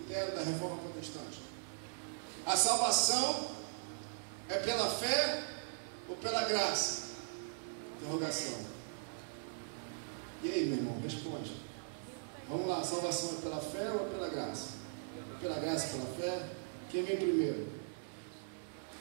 da Reforma Protestante. A salvação é pela fé ou pela graça? Interrogação. E aí, meu irmão, responde. Vamos lá, a salvação é pela fé ou é pela graça? É pela graça, pela fé? Quem vem primeiro?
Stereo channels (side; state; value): left; silent; digital silence